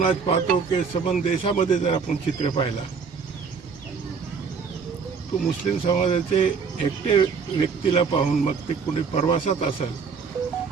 आज पाहतो की संबंध देशामध्ये जर आपण चित्र पाहिला तो मुस्लिम समाजाचे एकटे व्यक्तीला पाहून, मग ते कुणी प्रवासात असेल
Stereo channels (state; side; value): quieter; left; 5.6 dB